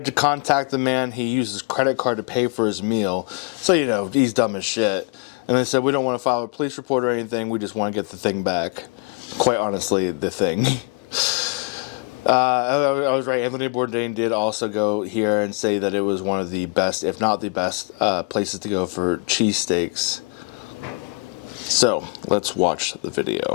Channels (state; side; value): quieter; right; 33.4 dB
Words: to contact the man. He used his credit card to pay for his meal. So, you know, he's dumb as shit. And they said, we don't want to file a police report or anything. We just want to get the thing back. Quite honestly, the thing. I was right. Anthony Bourdain did also go here and say that it was one of the best, if not the best, places to go for cheesesteaks. So, let's watch the